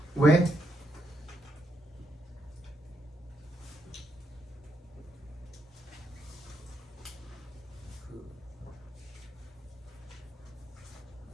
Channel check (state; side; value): normal; both; correlation 0.79